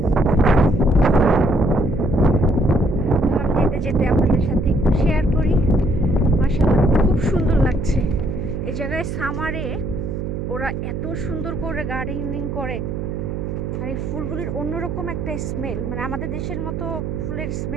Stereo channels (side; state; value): right; noise; hum, 4 dB below the sound